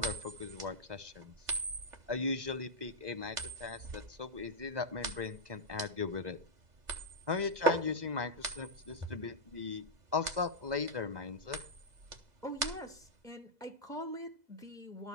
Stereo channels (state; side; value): late; left; 2.0 ms